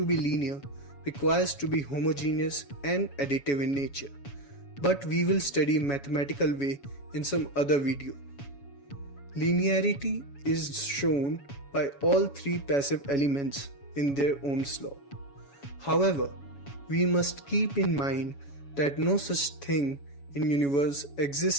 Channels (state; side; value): late; right; 7.1 ms